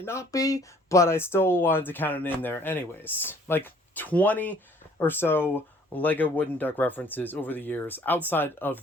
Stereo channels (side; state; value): both; normal; correlation 0.58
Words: not be, but I still wanted to count it in there anyways. Like 20 or so Lego wooden duck references over the years outside of